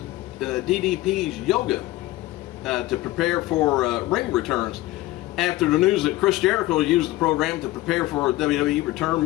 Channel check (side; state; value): right; quieter; 17.5 dB